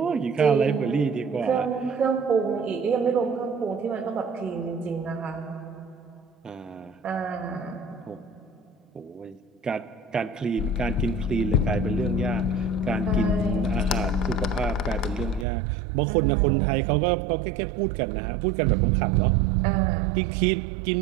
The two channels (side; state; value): left; drops out; at 15.5 s